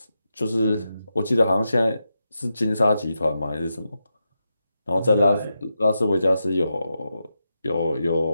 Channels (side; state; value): both; inverted; correlation -0.88